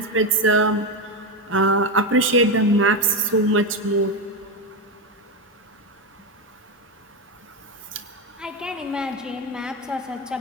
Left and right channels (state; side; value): normal; both; correlation 0.12